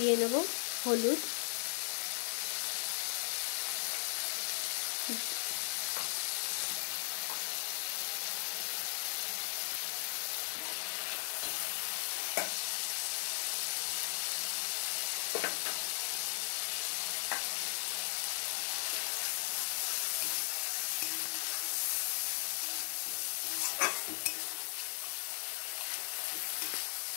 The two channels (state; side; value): silent; right; digital silence